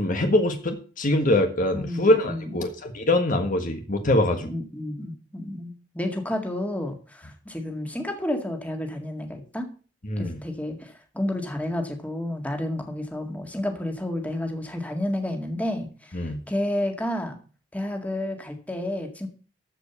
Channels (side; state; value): both; normal; correlation 0.59